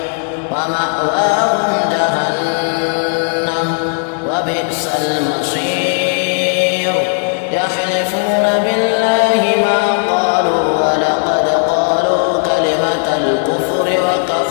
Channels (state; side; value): silent; right; digital silence